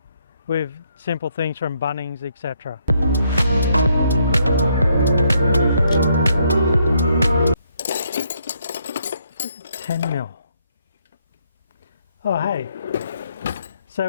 with simple things from Bunnings, etc. 10mm. Oh hey,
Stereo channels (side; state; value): both; inverted; correlation -0.73